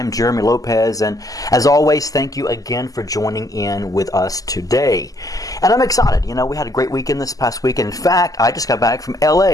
Jeremy Lopez, and as always, thank you again for joining in with us today. And I'm excited. You know, we had a great weekend this past weekend. In fact, I just got back from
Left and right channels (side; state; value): right; late; 0.17 ms